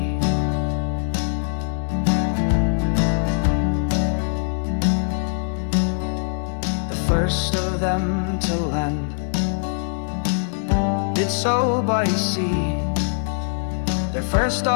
The first of them to land did so by sea. Their first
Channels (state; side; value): silent; right; digital silence